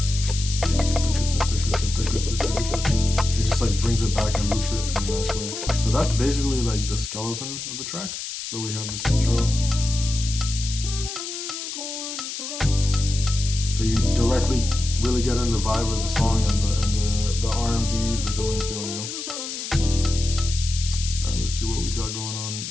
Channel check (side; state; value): left; noise; hiss, 7 dB below the sound